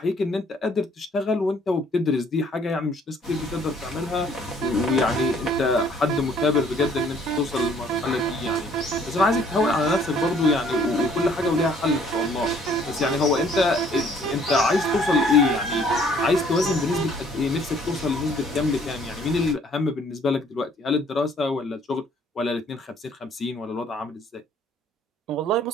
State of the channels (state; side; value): normal; both; correlation 0.60